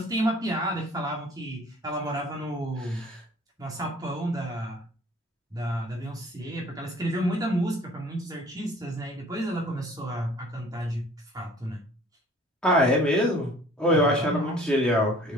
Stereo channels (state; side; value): normal; both; correlation 0.52